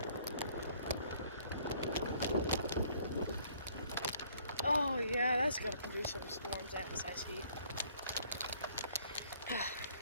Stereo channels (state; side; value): inverted; both; correlation -0.60